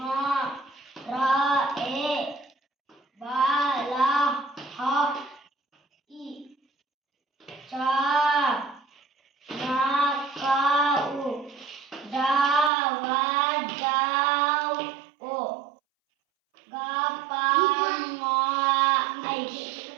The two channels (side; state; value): left; drops out; at 12.7 s